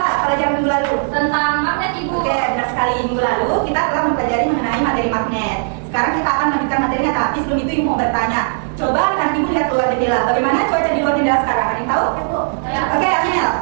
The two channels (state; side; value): silent; left; digital silence